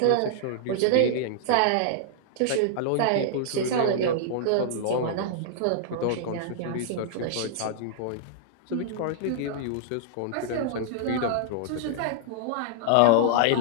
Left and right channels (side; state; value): both; different; correlation -0.01